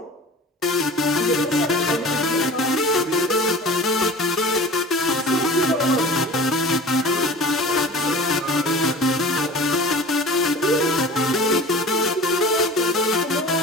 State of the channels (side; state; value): both; normal; correlation 0.40